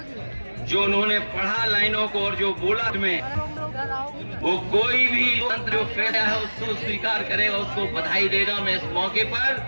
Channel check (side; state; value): both; inverted; correlation -1.00